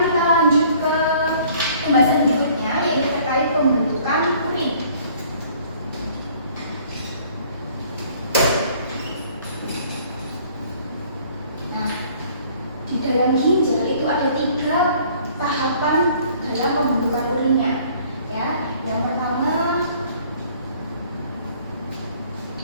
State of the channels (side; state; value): both; inverted; correlation -0.56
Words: kita lanjut ke pembahasan berikutnya, yaitu terkait pembentukan urin. Nah, di dalam ginjal itu ada 3 tahapan dalam pembentukan urinnya. Ya, yang pertama